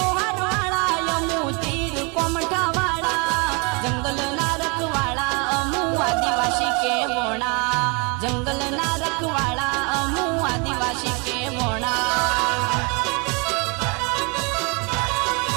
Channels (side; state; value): left; quieter; 31.1 dB